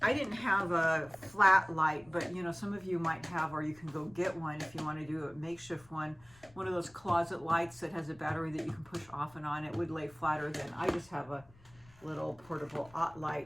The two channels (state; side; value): noise; left; rumble, 26 dB below the sound